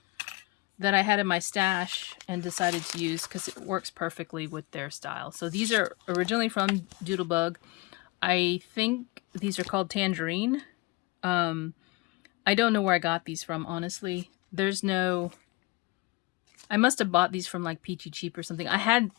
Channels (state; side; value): quieter; right; 23.2 dB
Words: that I had in my stash and decided to use because it works perfectly with their style. So these are originally from Doodlebug. I think these are called Tangerine. I don't know where I got these from, honestly. There's no... I must have bought these from like Peachy Cheap or something. I had